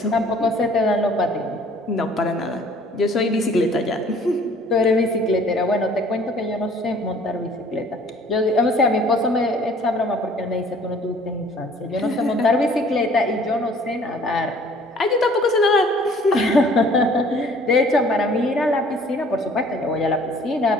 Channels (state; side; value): normal; both; correlation 0.55